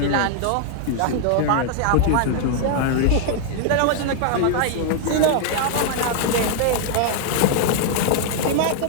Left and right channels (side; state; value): both; different; correlation 0.00